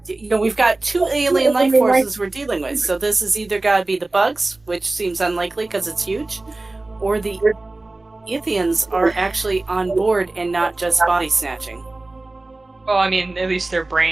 you know, we've got two alien life forces we're dealing with. So this is either got to be the bugs, which seems unlikely because it's huge, or the Ithians are actually on board and not just body snatching. Well, I mean, at least their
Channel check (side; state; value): left; quieter; 3.0 dB